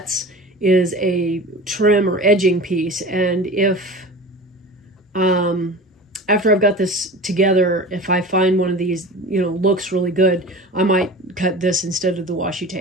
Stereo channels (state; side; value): normal; both; correlation 0.35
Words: is a trim or edging piece. And if after I've got this together, if I find one of these, you know, looks really good, I might cut this instead of the washi